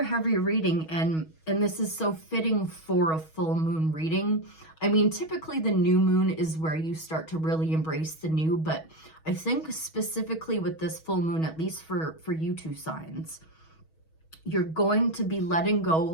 heavy reading, and this is so fitting for a full moon reading. I mean, typically the new moon is where you start to really embrace the new, but I think specifically with this full moon, at least for you two signs, you're going to be letting go.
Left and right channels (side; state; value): right; late; 6.3 ms